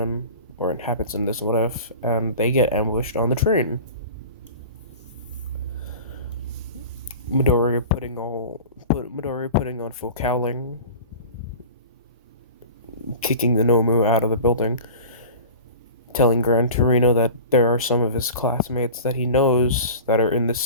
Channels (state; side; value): inverted; both; correlation -0.37